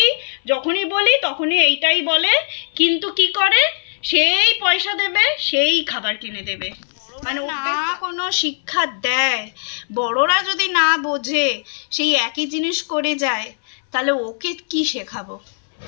যখনই বলি তখনই এইটাই বলে, কিন্তু কি করে? সেই পয়সা দেবে, সেই খাবার কিনে দেবে। মানে না কোনো শিক্ষা দেয়, বড়রা যদি না বোঝে, সেই একই জিনিস করে যায়, তাহলে ওকে কি শেখাবো?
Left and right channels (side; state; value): right; silent; 61 dB below the other